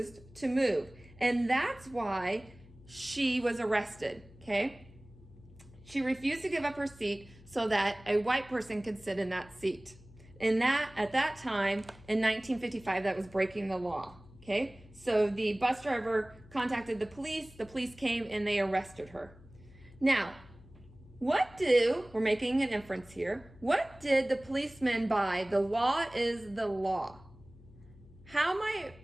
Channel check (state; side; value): noise; left; hum, 22 dB below the sound